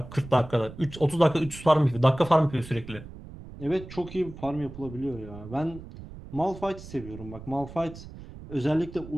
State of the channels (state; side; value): noise; right; rumble, 14 dB below the sound